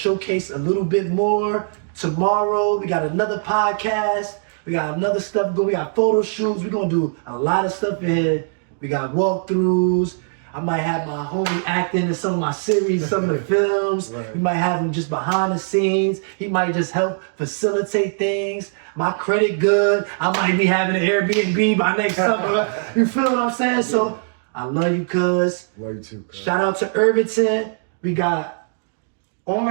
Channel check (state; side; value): silent; left; digital silence